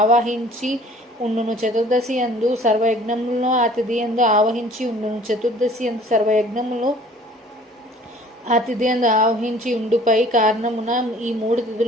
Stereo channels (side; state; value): both; normal; correlation 0.51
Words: ఆవాహించి ఉండును. చతుర్దశి యందు సర్వయజ్ఞములను ఆ తిథి యందు ఆవహించి ఉండును. చతుర్దశి యందు సర్వయజ్ఞములు ఆ తిథి యందు ఆవహించి ఉండుపై కారణమున ఈ 3